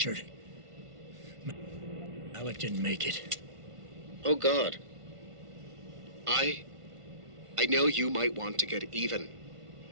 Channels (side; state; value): left; late; 1.5 ms